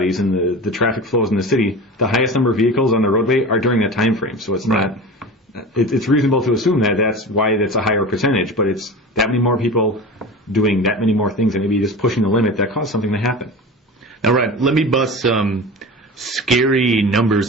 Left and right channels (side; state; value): both; normal; correlation 0.32